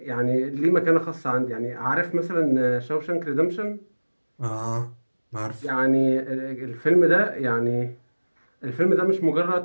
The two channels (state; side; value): inverted; both; correlation -1.00